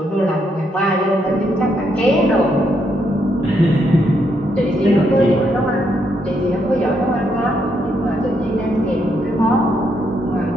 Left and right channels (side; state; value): both; normal; correlation 0.77